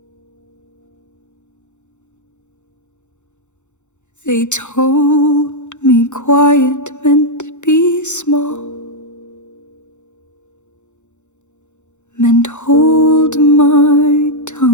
They told me quiet meant to be small, meant hold my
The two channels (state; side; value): late; right; 0.84 ms